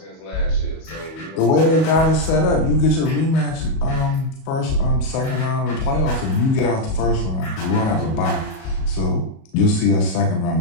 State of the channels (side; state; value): right; late; 37 ms